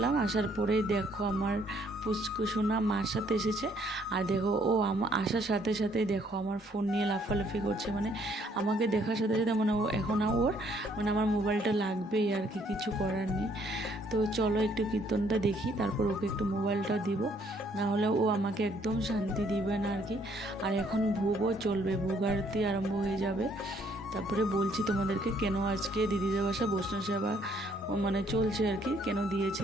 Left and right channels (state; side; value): normal; both; correlation 0.66